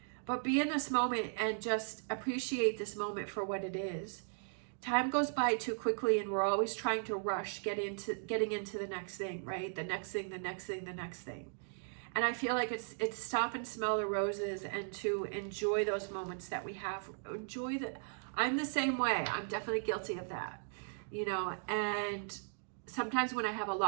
But be in this moment and just appreciate this moment for what it is. Time goes by too quickly, and we're always trying to rush getting into the next thing, right? The next thing, the next thing, the next thing. And I feel like it's stop and smell the roses and to enjoy those moments that we have. I'm the same way. I'm definitely guilty of that, you know. And sometimes when I have a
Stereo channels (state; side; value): silent; left; digital silence